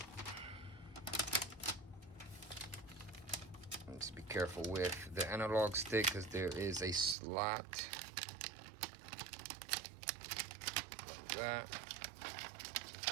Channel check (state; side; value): drops out; left; at 7.2 s